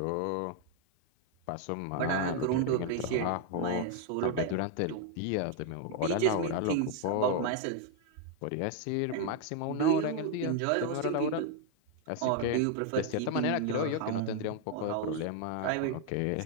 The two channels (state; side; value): different; both; correlation 0.00